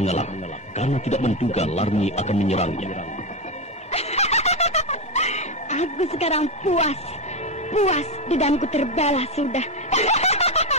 karena tidak menduga Larmi akan menyerangnya. Aku sekarang puas. Dendamku terbalas sudah.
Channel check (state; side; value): normal; both; correlation 0.12